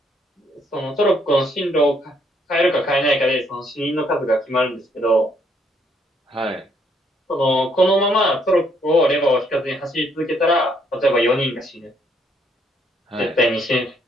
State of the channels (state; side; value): normal; both; correlation 0.69